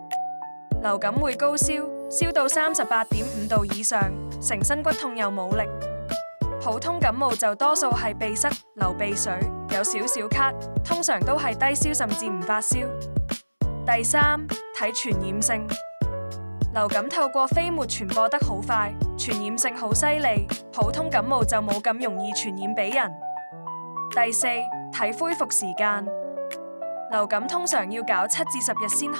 流感會高燒，燒到38.5度以上，成身骨痛又冇力。普通感冒就多數係鼻塞、流鼻水，有少少咳，通常都係低燒甚至唔發燒。第三，睇傳染性。流感透過飛沫傳播得好快，傳染性好犀利，普通感冒就冇咁容易傳染俾人。第四，睇恢復時間。流感通常要搞7至10日先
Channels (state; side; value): inverted; both; correlation -1.00